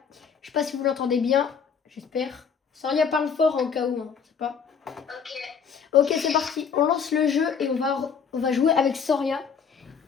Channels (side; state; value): right; quieter; 6.6 dB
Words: Je sais pas si vous l'entendez bien, j'espère. Soria parle fort en cas où, hein, je sais pas. Ok, c'est parti. On lance le jeu et on va jouer avec Soria.